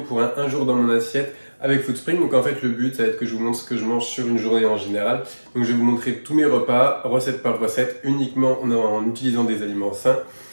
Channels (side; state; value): both; inverted; correlation -1.00